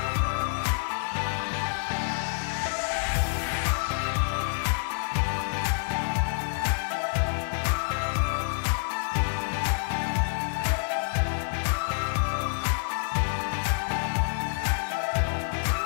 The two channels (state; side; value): silent; right; digital silence